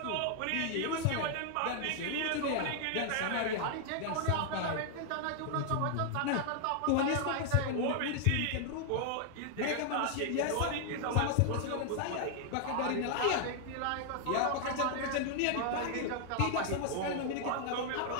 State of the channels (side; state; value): both; different; correlation 0.00